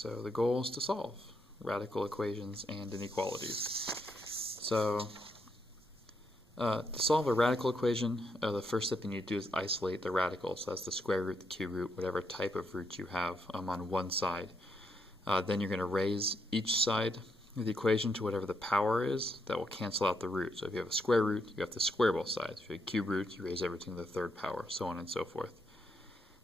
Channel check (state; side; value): normal; both; correlation 0.78